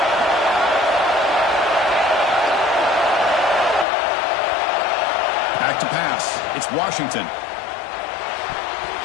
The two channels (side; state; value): right; drops out; at 3.9 s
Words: Back to pass. It's Washington.